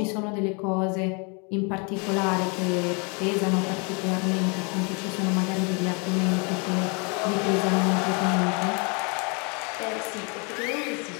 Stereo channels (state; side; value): quieter; right; 33.8 dB